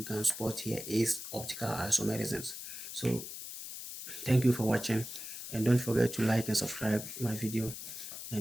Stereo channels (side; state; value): left; noise; hiss, 9 dB below the sound